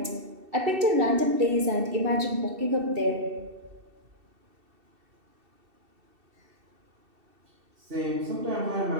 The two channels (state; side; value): late; left; 2.7 ms